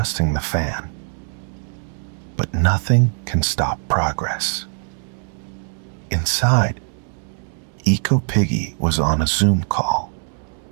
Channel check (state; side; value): silent; left; digital silence